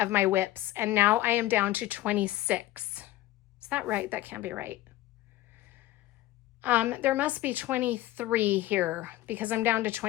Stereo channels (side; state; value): right; quieter; 16.1 dB